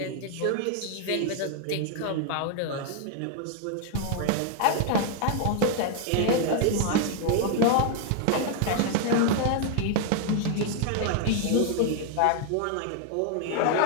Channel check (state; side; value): different; both; correlation 0.00